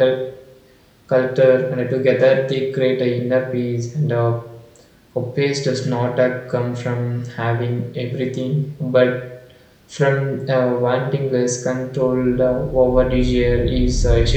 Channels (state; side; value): identical; both; correlation 1.00